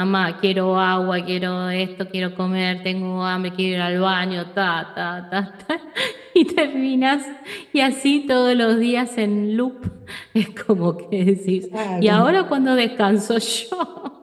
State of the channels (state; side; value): identical; both; correlation 1.00